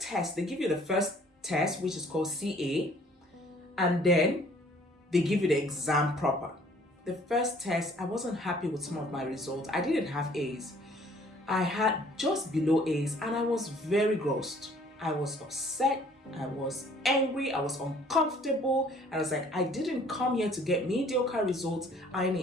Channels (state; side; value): normal; both; correlation 0.57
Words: test, they give you the first test, which is called CA, and then they give you the exam proper. The first test, I wasn't happy with some of my results. I didn't have A's. I had just below A's, and I was very grossed. I was upset, I was angry, I was uncomfortable. I was like, I didn't come here to get mediocre results. I